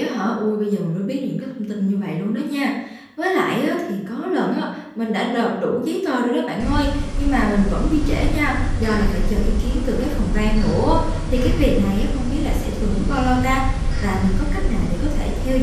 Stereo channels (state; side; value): identical; both; correlation 1.00